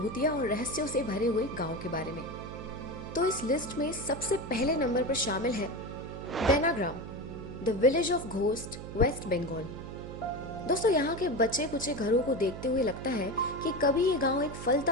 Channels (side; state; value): right; noise; hum, 10 dB below the sound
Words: और रहस्यों से भरे हुए गांव के बारे में। तो इस लिस्ट में सबसे पहले नंबर पर शामिल है बेनाग्राम, the village of ghost, West Bengal. दोस्तों, यहाँ के बचे कुचे घरों को देखते हुए लगता है कि कभी ये गांव एक